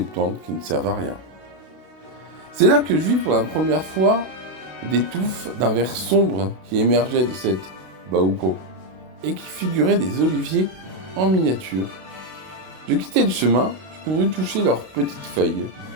qui ne servent à rien. C'est là que je vis pour la première fois des touffes d'un vert sombre qui émergeaient de cette baouko et qui figuraient des oliviers en miniature. Je quittai le chemin, je courus toucher leurs petites feuilles.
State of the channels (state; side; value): late; left; 32 ms